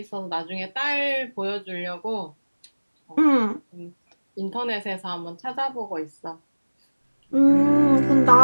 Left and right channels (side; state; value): both; inverted; correlation -1.00